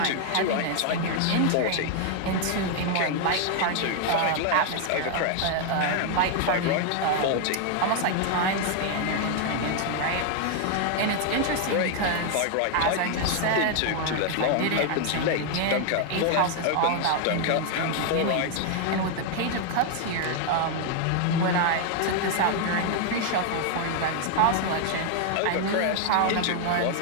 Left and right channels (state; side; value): different; both; correlation 0.00